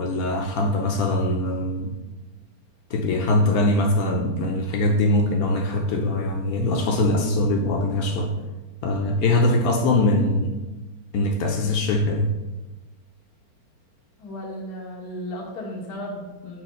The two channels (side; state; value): left; late; 4.4 ms